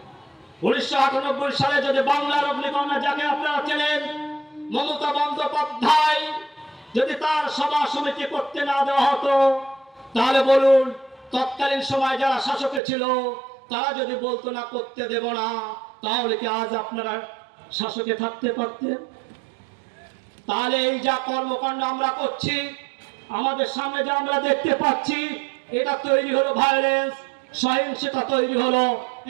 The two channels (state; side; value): drops out; left; at 12.8 s